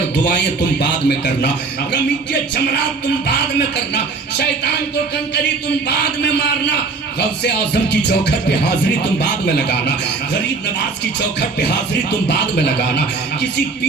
دعائیں تم بعد میں کرنا، رمی کے جمرات تم بعد میں کرنا، شیطان کو کنکری تم بعد میں مارنا، غوث اعظم کی چوکھٹ پہ حاضری تم بعد میں لگانا، غریب نواز کی چوکھٹ پہ حاضری تم بعد میں لگانا، کسی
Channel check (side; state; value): left; quieter; 4.2 dB